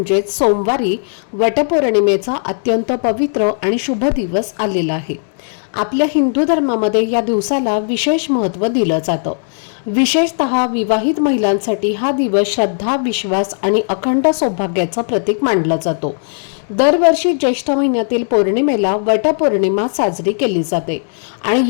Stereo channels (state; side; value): silent; right; digital silence